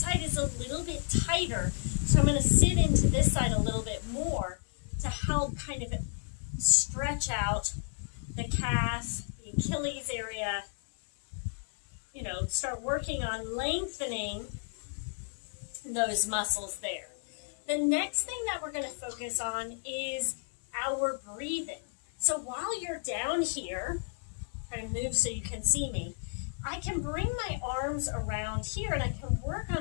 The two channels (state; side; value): silent; right; 56 dB below the other